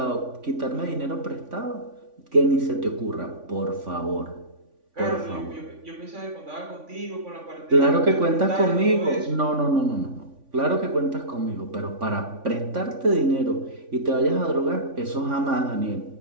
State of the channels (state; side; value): late; left; 3.5 ms